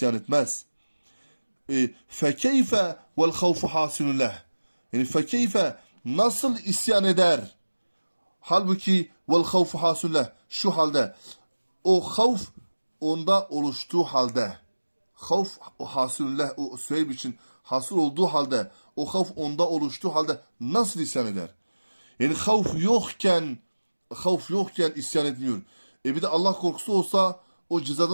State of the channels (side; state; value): both; inverted; correlation -1.00